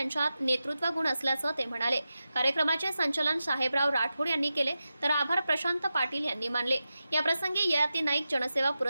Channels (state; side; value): inverted; both; correlation -0.92